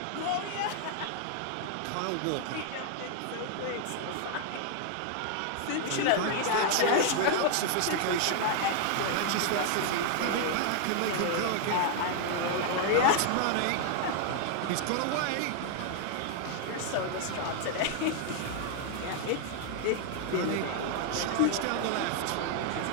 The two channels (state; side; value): different; both; correlation 0.00